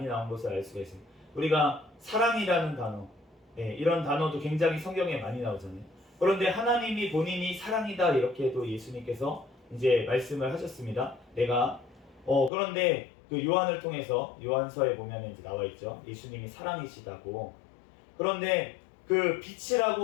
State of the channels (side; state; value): right; drops out; at 12.5 s